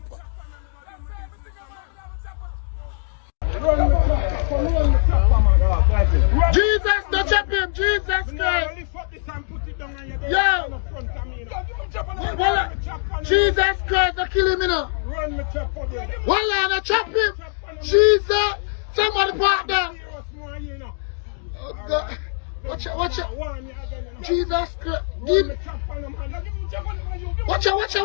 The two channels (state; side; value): silent; right; 64 dB below the other